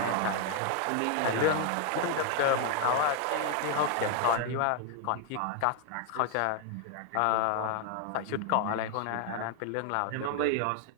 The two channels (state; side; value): different; both; correlation 0.00